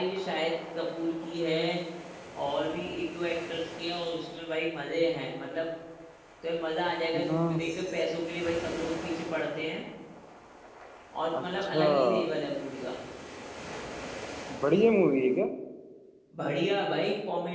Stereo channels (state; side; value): identical; both; correlation 1.00